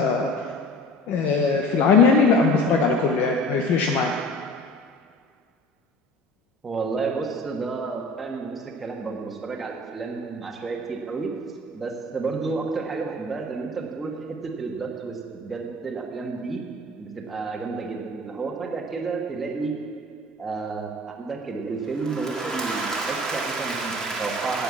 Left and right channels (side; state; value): both; normal; correlation 0.42